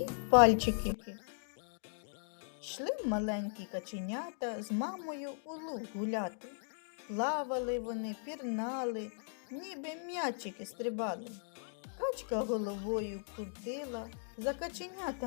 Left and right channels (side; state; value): right; silent; digital silence